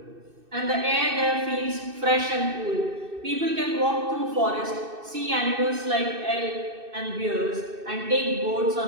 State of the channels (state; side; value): late; left; 2.6 ms